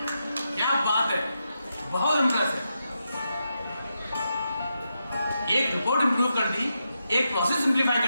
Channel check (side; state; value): both; inverted; correlation -0.86